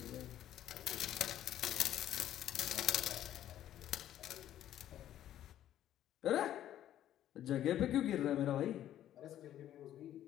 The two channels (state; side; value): quieter; right; 11.9 dB